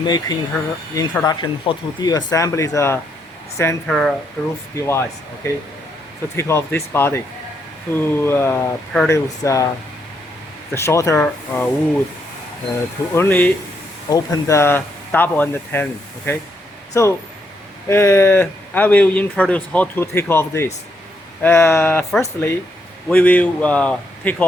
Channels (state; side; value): normal; both; correlation 0.77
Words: introduction how to deassemble the center groove device. Okay, to take off this body to produce the shorter wood to only open the double and the tenon. Okay, so I will introduce how to take off this. Firstly, we will take